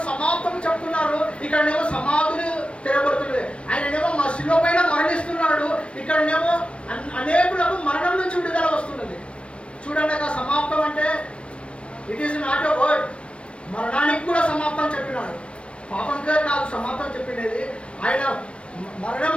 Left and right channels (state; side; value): late; right; 0.060 ms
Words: సమాప్తం చెప్తున్నారు, ఇక్కడనేమో సమాధులు తెరబడుతున్నాయి. ఆయననేమో మా శిలువ పైన మరణిస్తున్నాడు, ఇక్కడనేమో అనేకులకు మరణం నుంచి విడుదల వస్తున్నది. చూడండి, ఆ సమాప్తం అంటే it is not a word. మరణానికి కూడా సమాప్తం చెప్పినాడు. పాపంగా కాదు సమాప్తం చెప్పినది. ఆయన మరణం